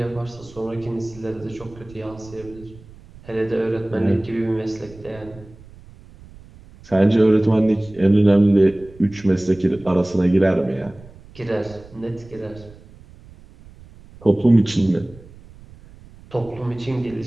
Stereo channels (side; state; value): right; noise; rumble, 21 dB below the sound